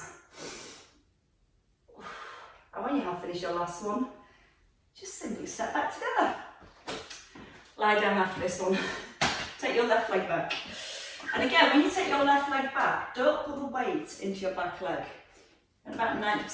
And when you have finished your last one, just simply step back together. Lie down after this one. Take your left leg back. And again, when you take your left leg back, don't put the weight into your back leg. And about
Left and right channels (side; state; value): both; identical; correlation 1.00